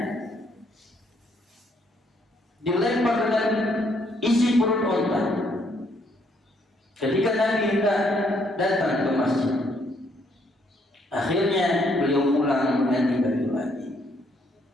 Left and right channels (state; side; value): normal; both; correlation 0.70